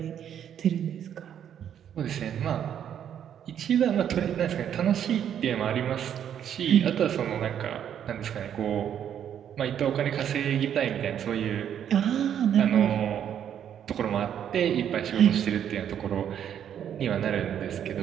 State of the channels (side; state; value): left; quieter; 9.4 dB